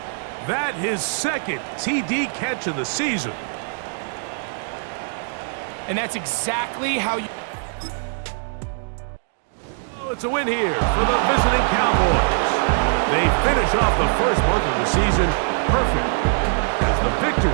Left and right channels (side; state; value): left; silent; digital silence